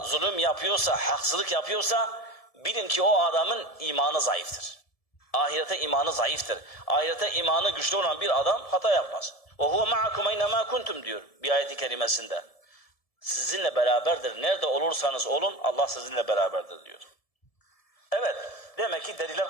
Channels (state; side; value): late; right; 1.7 ms